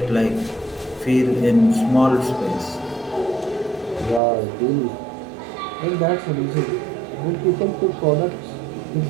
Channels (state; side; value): drops out; left; at 4.2 s